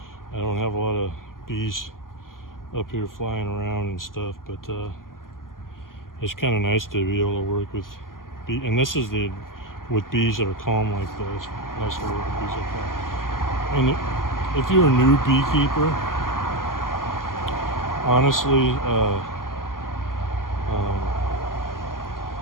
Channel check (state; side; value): late; right; 0.91 ms